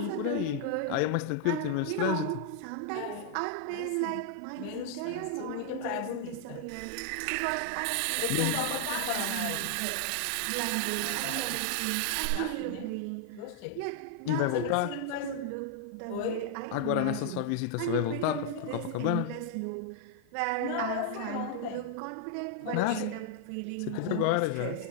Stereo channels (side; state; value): both; different; correlation 0.00